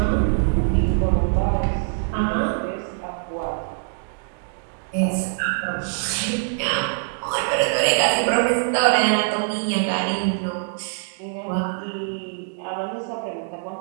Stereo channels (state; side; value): silent; left; digital silence